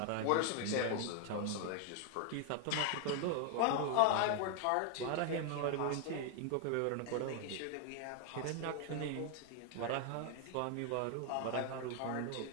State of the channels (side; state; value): both; different; correlation 0.00